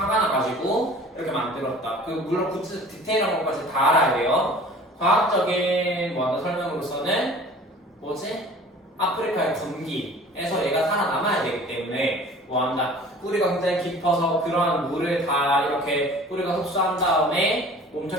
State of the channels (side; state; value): both; normal; correlation 0.46